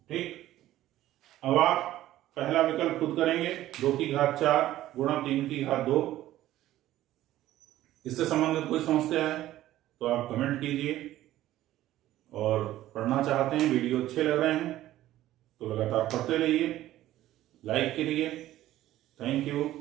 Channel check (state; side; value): quieter; left; 14.3 dB